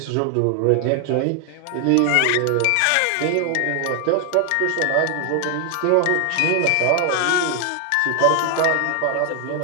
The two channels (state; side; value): different; both; correlation 0.00